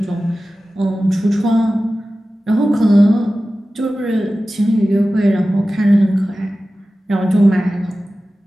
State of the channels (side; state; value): both; normal; correlation 0.95